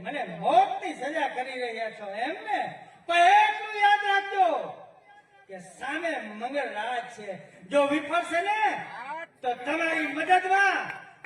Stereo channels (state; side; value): identical; both; correlation 1.00